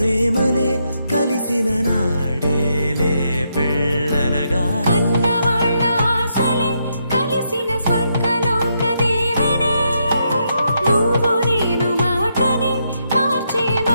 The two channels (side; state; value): both; inverted; correlation -0.79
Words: కలిసిన నాడేలే పెళ్ళనగా కన్నవాళ్ళ ఆశలే కలిసిన స్వర్గలోక దీవెనే నువ్వు నేను మాటని మార్చే